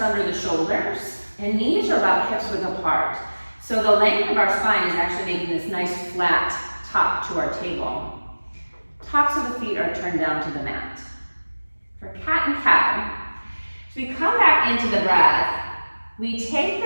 the shoulders. And knees are about hips width apart. So the length of our spine is actually making this nice flat top to our table. Tops of the feet are turned down to the mat. For cat and cow, as we come back into the breath, we take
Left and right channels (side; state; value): both; inverted; correlation -1.00